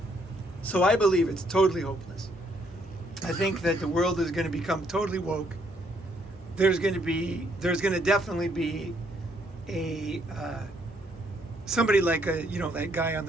So I believe it's totally hopeless. I think that the world is going to become totally woke. There's going to definitely be a somebody like that guy on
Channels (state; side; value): normal; both; correlation 0.70